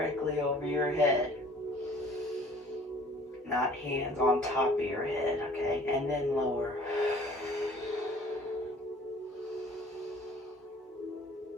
over your head. Not hands on top of your head, okay? And then lower.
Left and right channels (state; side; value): normal; both; correlation 0.52